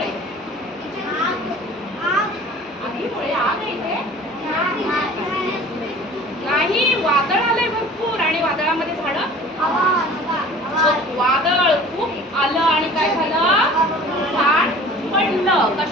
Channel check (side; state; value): both; normal; correlation 0.45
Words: आगीमुळे. आग आहे इथे? नाही, वादळ आलंय भरपूर आणि वादळामध्ये झाडं, वादळ खूप आलं आणि काय झालं? झाड पडलं.